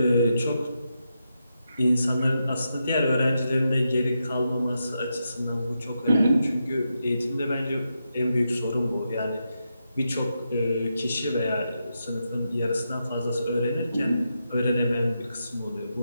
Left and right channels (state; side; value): inverted; both; correlation -0.86